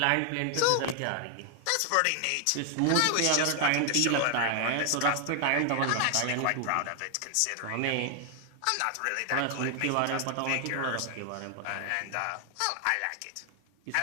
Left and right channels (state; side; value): different; both; correlation 0.00